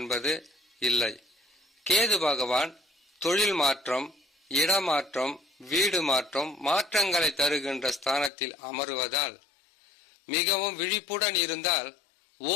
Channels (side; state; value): right; drops out; at 8.3 s